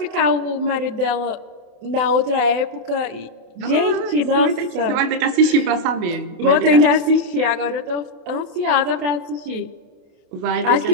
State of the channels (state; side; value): late; left; 28 ms